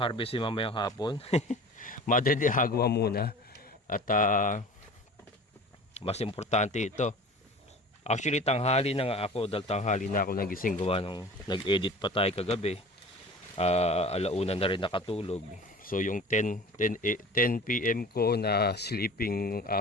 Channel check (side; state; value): both; normal; correlation 0.40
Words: mamayang hapon. Madre de Agua muna. At mas importante ito. Actually, tanghali na nga ako. Dahil tanghali na ako nagising gawa nung nag-edit pa tayo kagabi. Alauna na rin nakatulog. So yung 10 PM ko na sleeping